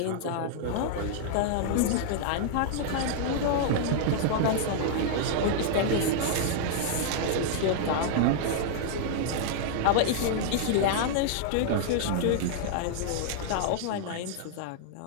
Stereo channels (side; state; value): both; different; correlation -0.01